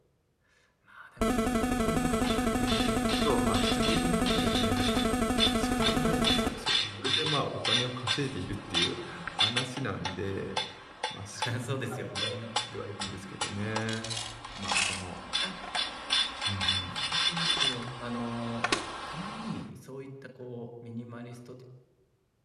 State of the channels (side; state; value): both; identical; correlation 1.00